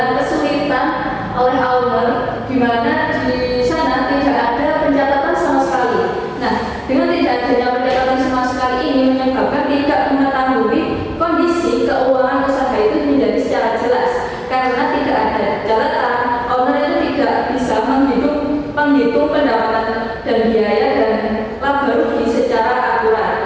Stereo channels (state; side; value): identical; both; correlation 1.00